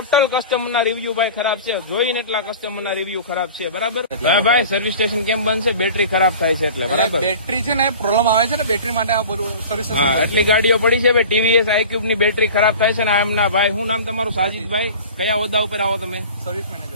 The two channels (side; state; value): both; inverted; correlation -0.40